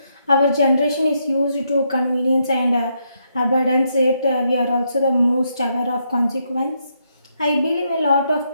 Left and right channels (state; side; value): inverted; both; correlation -0.78